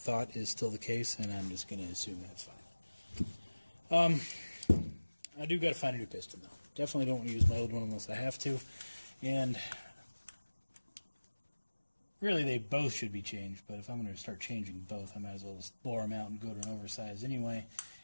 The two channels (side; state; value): both; inverted; correlation -1.00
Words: is still the case, and I'm just going to assume that's fine. I do got to find a new piston, though. Definitely don't want to use my old one unless I have to, and really they both should be changed, but if I'm going to start changing both, I might as well just bore them out and go to an oversize anyway,